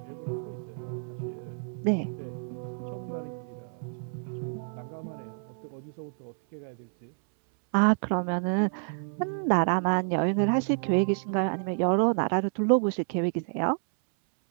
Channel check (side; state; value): left; silent; 59 dB below the other